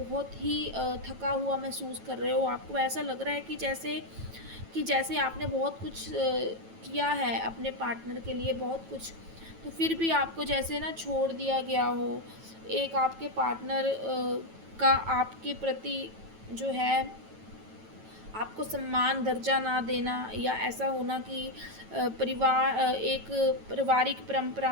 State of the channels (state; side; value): late; left; 9.1 ms